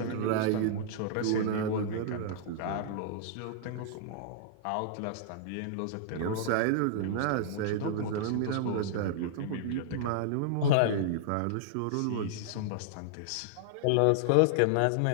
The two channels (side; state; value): both; different; correlation -0.01